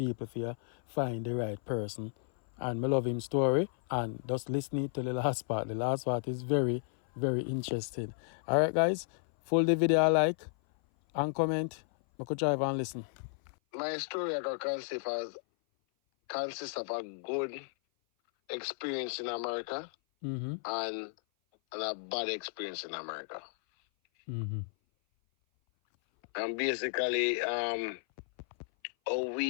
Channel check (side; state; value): right; silent; 56 dB below the other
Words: for you find the right person. And me love him story and just listen to the last part. The last part is very, very interesting. Alright guys, full the video like and comment. I could drive and listen. My story I got consists of a good experience in America and a bad experience in America. And basically, how